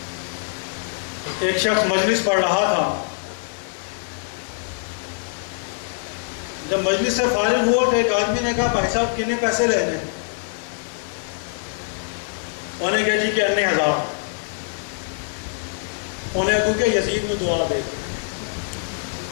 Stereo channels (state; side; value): silent; right; 63 dB below the other